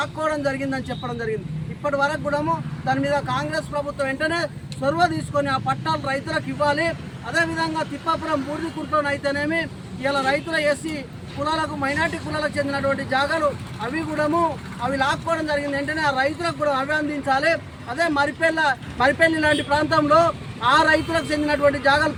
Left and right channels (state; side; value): identical; both; correlation 1.00